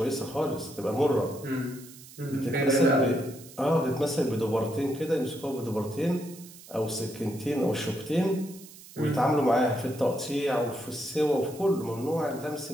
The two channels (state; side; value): noise; right; hiss, 19 dB below the sound